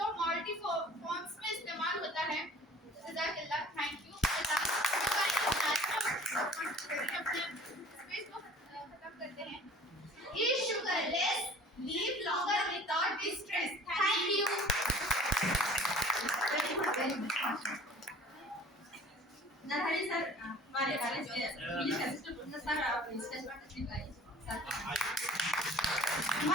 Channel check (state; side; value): normal; both; correlation 0.48